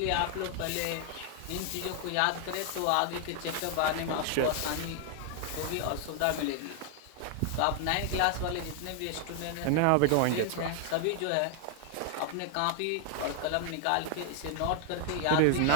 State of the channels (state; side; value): different; both; correlation 0.00